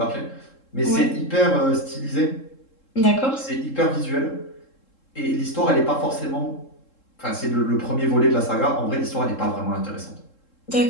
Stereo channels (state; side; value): late; right; 3.7 ms